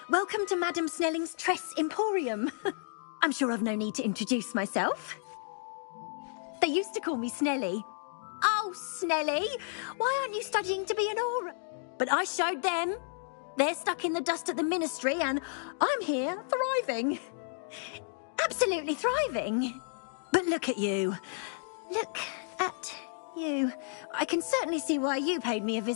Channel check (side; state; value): right; silent; digital silence